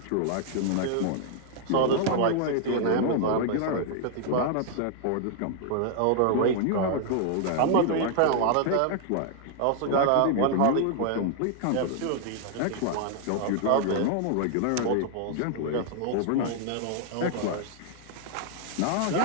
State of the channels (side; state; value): both; different; correlation 0.00